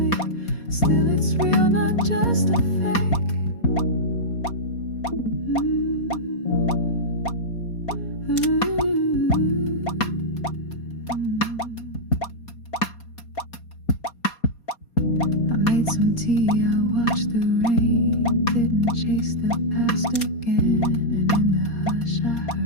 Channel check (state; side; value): late; right; 4.2 ms